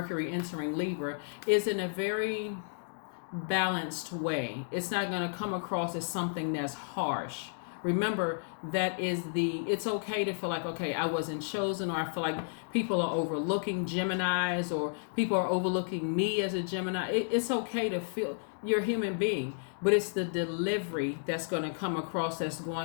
entering Libra, is in a very balanced way. It's not going to come across as something that's harsh, Remember, it's okay to feel like, okay, I wasn't chosen, or I feel like people are overlooking Geminis, or people are overlooking me as a Gemini. It's okay to feel you're a human being, but it's the delivery that's going to come across that's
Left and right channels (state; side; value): silent; right; digital silence